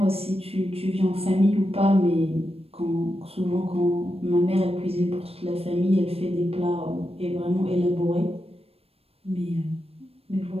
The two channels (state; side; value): late; left; 0.28 ms